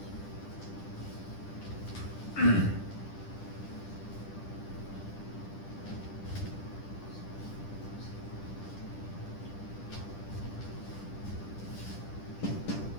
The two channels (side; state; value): right; late; 10 ms